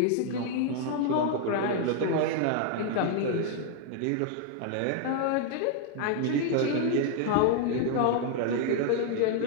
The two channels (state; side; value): different; both; correlation 0.00